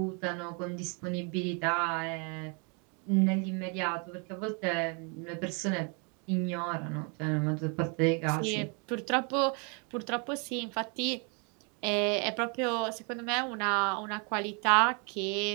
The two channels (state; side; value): quieter; left; 35.4 dB